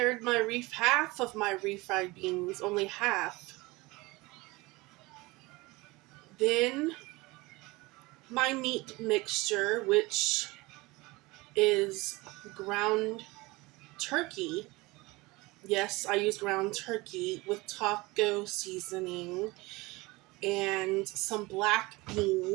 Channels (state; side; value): quieter; left; 22.6 dB